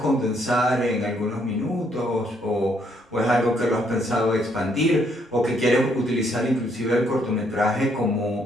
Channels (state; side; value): normal; both; correlation 0.71